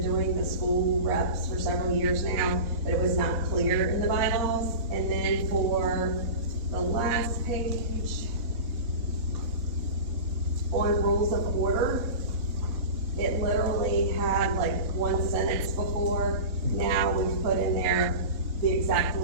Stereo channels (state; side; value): late; left; 3.6 ms